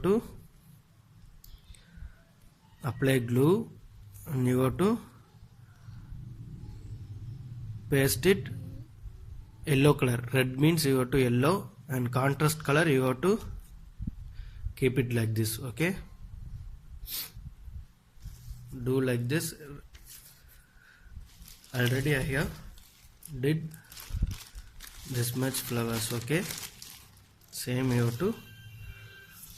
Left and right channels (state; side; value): identical; both; correlation 1.00